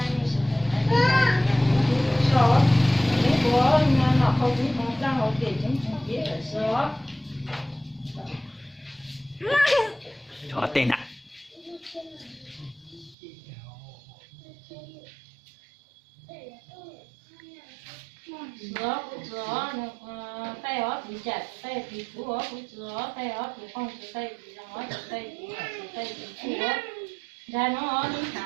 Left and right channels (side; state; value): left; drops out; at 13.2 s